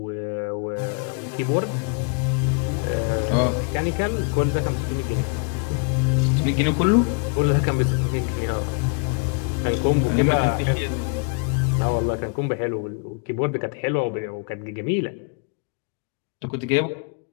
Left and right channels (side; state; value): right; quieter; 37.4 dB